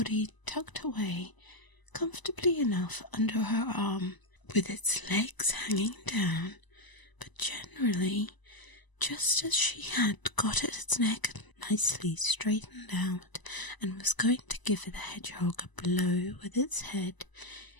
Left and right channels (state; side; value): late; right; 1.0 ms